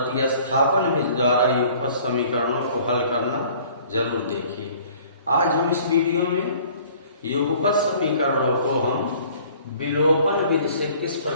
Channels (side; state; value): both; inverted; correlation -0.53